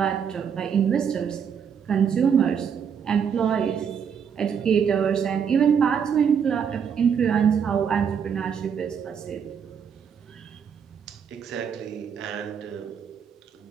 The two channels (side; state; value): left; quieter; 7.3 dB